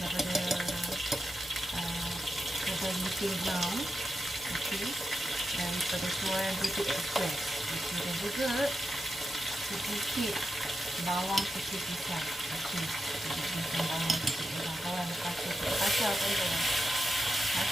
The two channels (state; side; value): normal; both; correlation 0.89